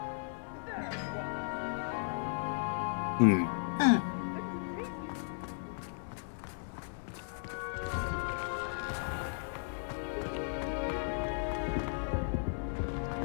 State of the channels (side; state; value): right; silent; digital silence